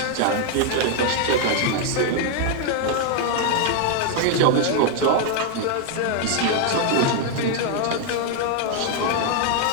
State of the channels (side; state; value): both; different; correlation 0.00